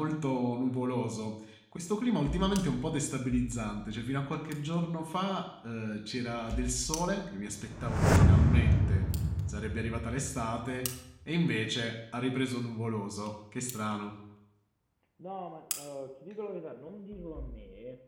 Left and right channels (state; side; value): identical; both; correlation 1.00